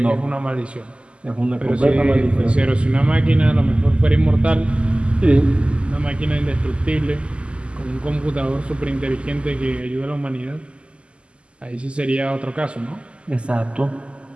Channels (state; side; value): late; left; 0.054 ms